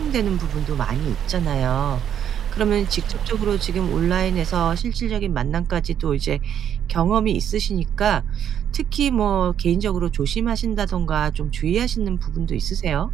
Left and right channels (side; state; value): left; quieter; 9.3 dB